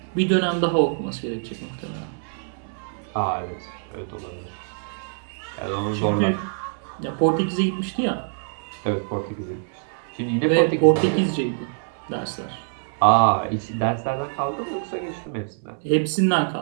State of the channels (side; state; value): left; silent; 62 dB below the other